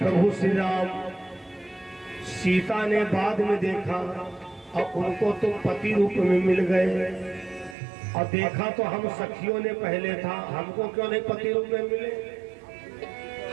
श्री राम। सीता ने बाद में देखा और उनको तो पति रूप में मिल गए, और देखा तो हम सखियों ने पहले था, हमको क्यों नहीं पति रूप में मिले?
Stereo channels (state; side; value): drops out; left; at 7.8 s